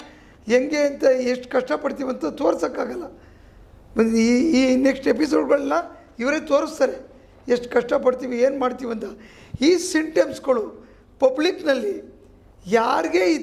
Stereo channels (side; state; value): both; identical; correlation 1.00